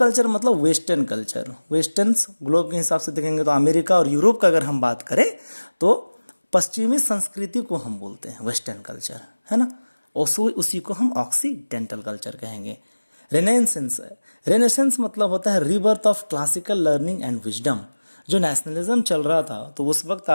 मतलब वेस्टर्न कल्चर। वेस्टर्न ग्लोब के हिसाब से देखेंगे तो अमेरिका और यूरोप का अगर हम बात करें तो पश्चिमी संस्कृति को हम बोलते हैं वेस्टर्न कल्चर, है ना। उसी को हम ऑक्सीडेंटल कल्चर कहेंगे। रेनेसेंस, रेनेसेंस मतलब होता है rebirth of classical learning and wisdom. जो नेशनलिज्म चल रहा था तो उस वक्त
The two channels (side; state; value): both; inverted; correlation -1.00